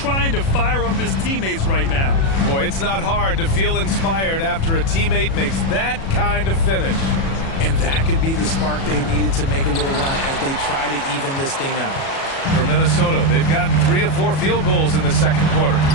to fire up his teammates right now. Boy, it's not hard to feel inspired after a teammate makes that kind of finish. And that could be the spark they needed to make a little run as they try to even this thing out. For Minnesota, they've gotten 3 of 4 field goals in the second quarter.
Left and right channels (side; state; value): right; late; 37 ms